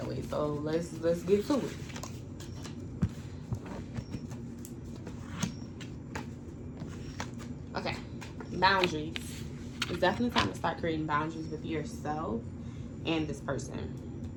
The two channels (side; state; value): both; identical; correlation 1.00